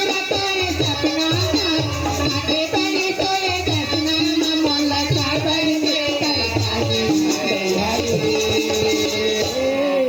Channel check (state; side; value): noise; right; hiss, 27 dB below the sound